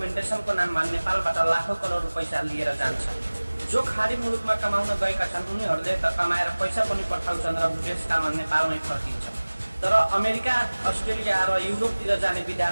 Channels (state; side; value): inverted; both; correlation -1.00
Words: नाममा नेपालबाट लाखौं करोड पैसा लिएर जान्छन्। जो खाडी मुलुकमा कमाउन गएका छन् उनीहरूले त कमाएर पैसा पनि पठाउँछन् र देशकालमा नेपालमै फर्किन्छन्, तर अमेरिका, अस्ट्रेलिया र युरोपतिर जाने